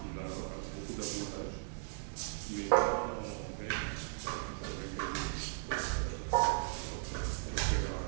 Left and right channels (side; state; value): left; silent; digital silence